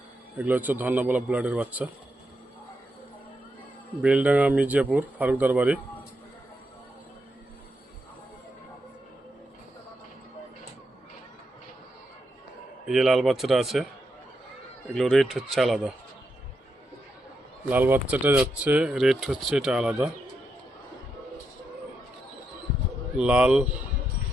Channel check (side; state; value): both; normal; correlation 0.83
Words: এগুলো হচ্ছে ধন্যবাদ ব্লাডের বাচ্চা। বেলডাঙ্গা মির্জাপুর ফারুকদার বাড়ি। এই যে লাল বাচ্চাটা আছে, এগুলো রেট হচ্ছে আলাদা। লাল বাচ্চাটা যাচ্ছে, রেট হচ্ছে এটা আলাদা। লাল,